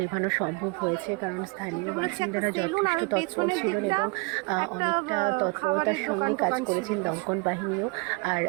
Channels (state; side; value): quieter; left; 27.5 dB